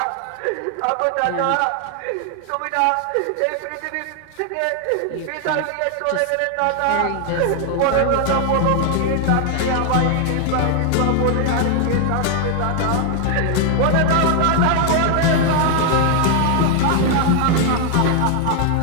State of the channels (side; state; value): both; different; correlation 0.00